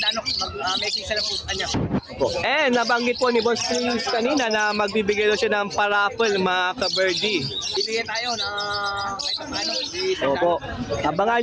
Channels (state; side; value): identical; both; correlation 1.00